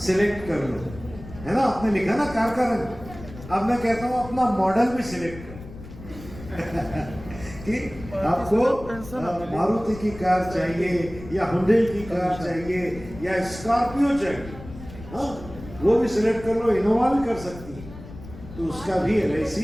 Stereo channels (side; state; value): left; noise; rumble, 15 dB below the sound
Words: कर लो, है ना? आपने लिखा ना कार का रंग। अब मैं कहता हूं अपना मॉडल भी सिलेक्ट कर कि आपको मारुति की कार चाहिए या हुंडई की कार चाहिए या स्कॉर्पियो चाहिए, हाँ, वो भी सिलेक्ट कर लो, इनोवा भी कर सकती है। तो उसका भी LIC